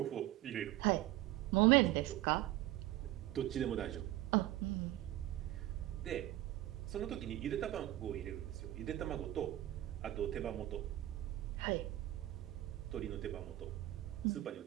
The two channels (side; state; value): left; quieter; 15.2 dB